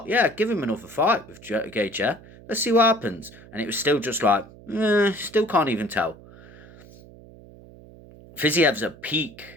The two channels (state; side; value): noise; right; hum, 21 dB below the sound